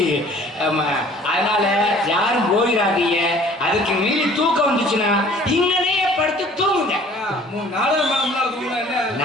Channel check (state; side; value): normal; both; correlation 0.52